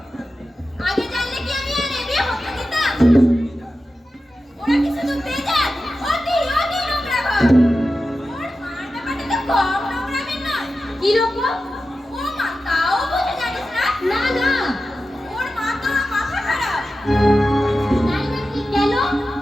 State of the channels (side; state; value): both; normal; correlation 0.92